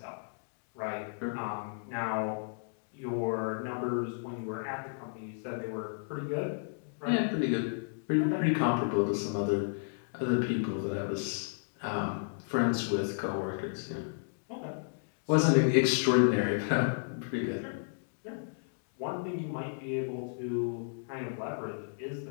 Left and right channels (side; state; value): right; silent; digital silence